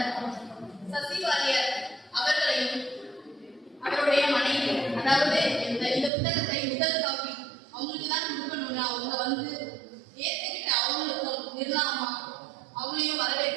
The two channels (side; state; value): left; drops out; at 6.1 s